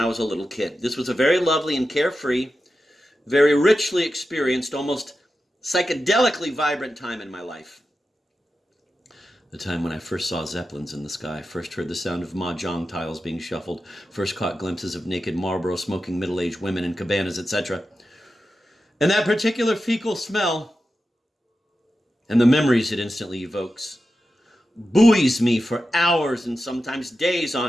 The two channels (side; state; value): both; normal; correlation 0.91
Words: was a little kid. This was a very lovely and carefree, very richly experienced, almost psychedelically vibrant time in my life. The time when I first saw Zeppelins in the sky, first heard the sound of mahjong tiles being shuffled, first caught glimpses of naked Marlboro smoking middle-aged women in cabanas, etc. And that particular fecal smell, and the memories it instantly evokes, buoys me for hours and sometimes days